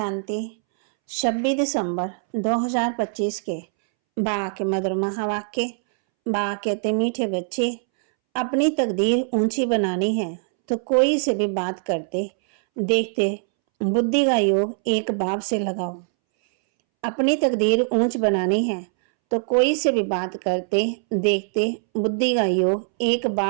26 दिसंबर 2025 के बा के मधुर महावाक्य। बा कहते मीठे बच्चे, अपनी तकदीर ऊंची बनानी है तो कोई से भी बात करते देखते बुद्धि का योग एक बाप से लगाओ। अपनी तकदीर ऊंच बनानी है तो कोई से भी बात करते देखते बुद्धि का योग एक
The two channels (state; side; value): silent; left; 64 dB below the other